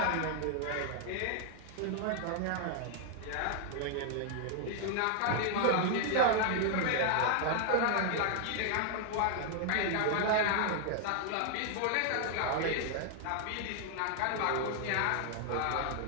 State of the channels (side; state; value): both; different; correlation 0.00